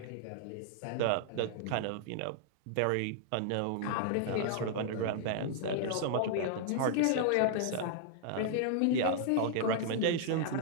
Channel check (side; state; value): both; different; correlation -0.01